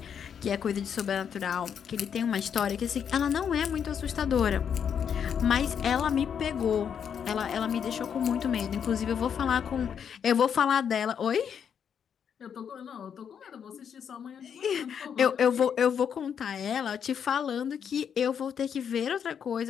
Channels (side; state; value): right; quieter; 7.8 dB